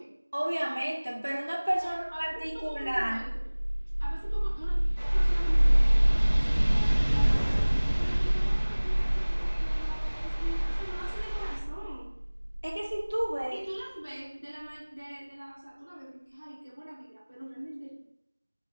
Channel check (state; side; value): inverted; both; correlation -1.00